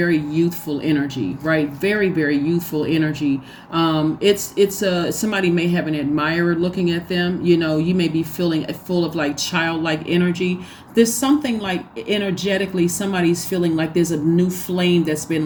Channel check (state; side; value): identical; both; correlation 1.00